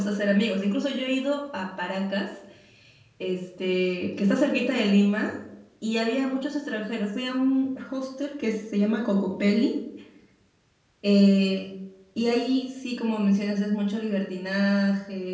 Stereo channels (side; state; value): both; identical; correlation 1.00